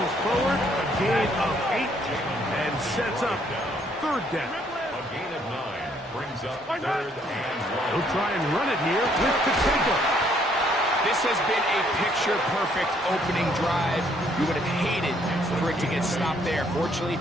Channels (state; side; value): normal; both; correlation 0.67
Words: forward. A gain of 8 and sets up third down. A gain of 9 brings up third and 1. He'll try and run it here with Pacheco. This has been a picture-perfect opening drive. You would have hated for it to get stopped there. Fortunately